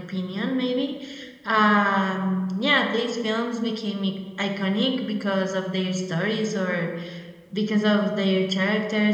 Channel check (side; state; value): both; identical; correlation 1.00